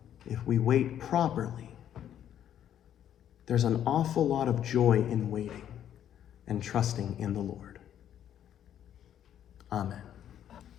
if we wait properly, there's an awful lot of joy in waiting and trusting in the Lord. Amen.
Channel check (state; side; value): quieter; right; 10.3 dB